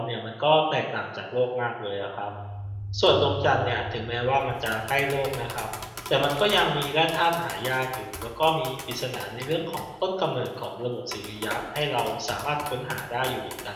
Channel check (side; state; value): both; identical; correlation 1.00